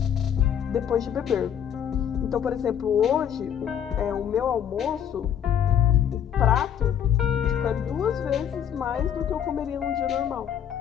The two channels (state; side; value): quieter; right; 9.0 dB